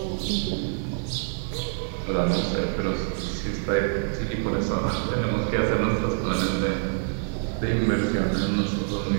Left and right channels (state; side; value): silent; left; digital silence